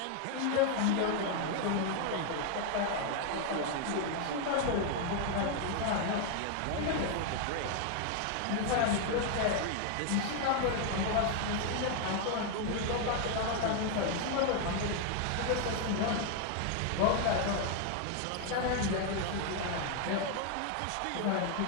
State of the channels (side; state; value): both; different; correlation 0.01